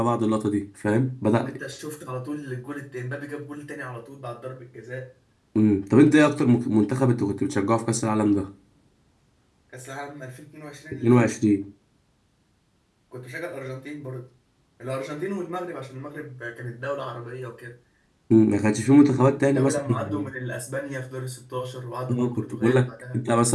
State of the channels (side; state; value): both; identical; correlation 1.00